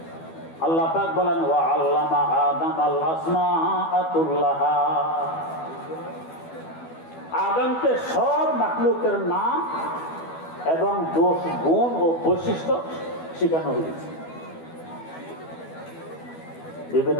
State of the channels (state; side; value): late; right; 12 ms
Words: আল্লাহ পাক বলেন ওয়া আল্লামা আদম আল আসমাআ কুল্লাহা। আদমকে সব মাখলুকের নাম এবং দোষ গুণ ও বৈশিষ্ট্য শেখানো হয়েছে।